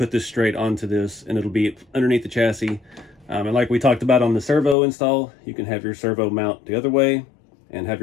this straight onto this and it'll be underneath the chassis. And like we talked about on the servo install, you can have your servo mount the other way and have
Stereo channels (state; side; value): drops out; right; at 4.8 s